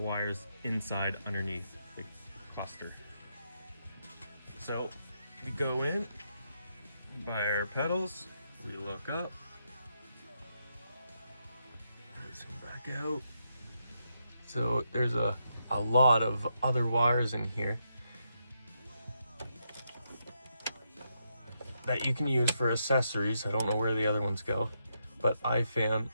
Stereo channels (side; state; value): both; inverted; correlation -0.81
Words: inside underneath the cluster. So we go in, by our pedals, we look up, let's come back out. So there's a lot of other wires in here that you can use for accessories. I don't know where the other ones go, but I found